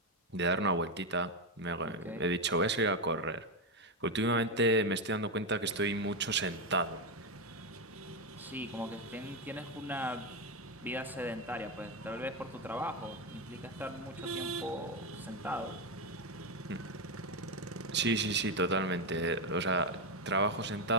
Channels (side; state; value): both; normal; correlation 0.08